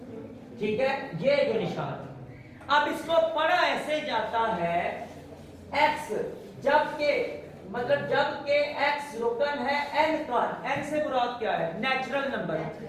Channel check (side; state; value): both; identical; correlation 1.00